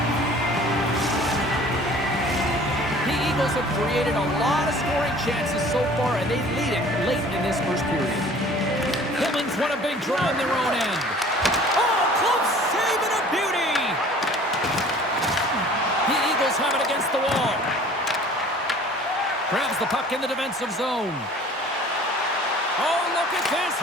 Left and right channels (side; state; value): both; normal; correlation 0.49